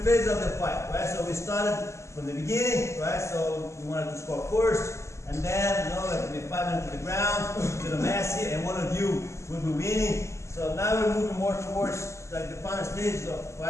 phases of the fight, right? So we started from the beginning, right? So we wanted to score first, and then, you know, like, I mean, 5 minutes to the ground, to the mass here, and one of you will be winning. So now we're moving more towards like the final stages of the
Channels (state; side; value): late; right; 0.14 ms